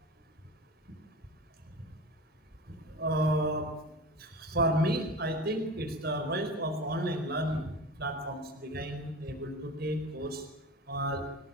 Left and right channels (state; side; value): normal; both; correlation 0.33